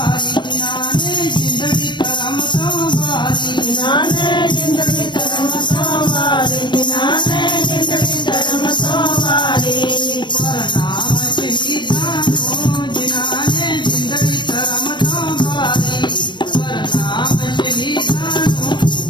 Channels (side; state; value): right; late; 0.22 ms